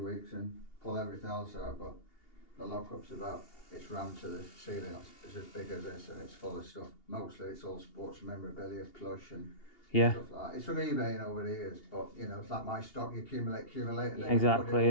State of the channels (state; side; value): late; right; 2.8 ms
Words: weeks and pull everything else out. But the lockup's about, it's rammed to the ceiling. It's as big as this and it's full of stuff. Mostly it's all sports memorabilia, plush and Yeah. stuff like that. It's from eBay over the years, but you know, it's like my stock, you accumulate, and then you Exactly, put it all